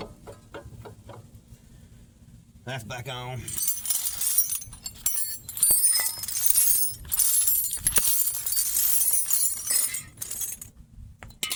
That's back on.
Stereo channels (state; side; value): identical; both; correlation 1.00